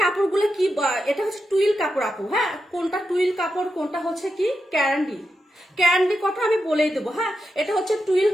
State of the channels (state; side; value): normal; both; correlation 0.87